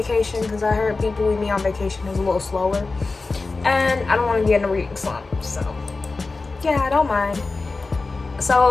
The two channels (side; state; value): right; quieter; 3.8 dB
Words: because I heard People We Meet on Vacation is a little slower, and I don't want to get in a reading slump, so yeah, I don't mind.